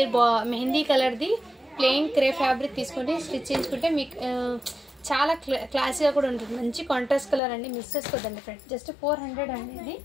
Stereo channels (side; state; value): right; drops out; at 7.4 s